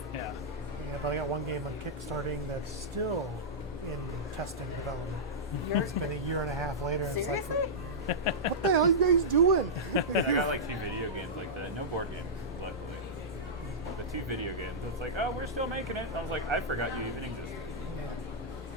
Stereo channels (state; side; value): normal; both; correlation -0.12